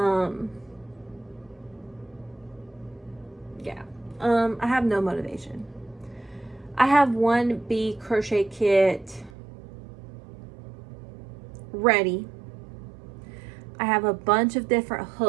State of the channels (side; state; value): left; drops out; at 9.3 s